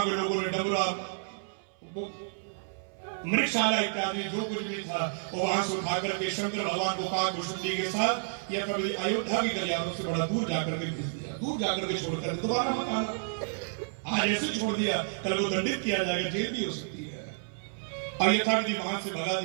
के लोगों ने डमरा मृगशाला इत्यादि जो कुछ भी था वो वहां से उठा करके शंकर भगवान को काकभूषुंडी के साथ या कभी अयोध्या की गलियारों से बड़ा दूर जाकर के भेज दिया, दूर जाकर के छोड़कर दोबारा मत आना। आज ऐसे छोड़ दिया, कल को दंडित किया जाएगा, जेल भी हो सकती है। और यथाविधि वहां से भगा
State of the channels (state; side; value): silent; left; 58 dB below the other